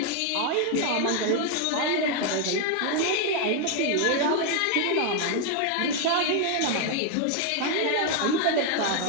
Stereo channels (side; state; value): both; different; correlation 0.01